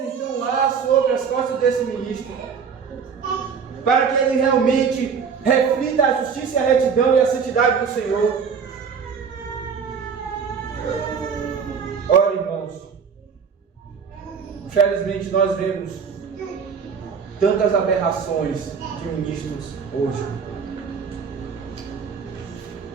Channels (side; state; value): left; quieter; 6.3 dB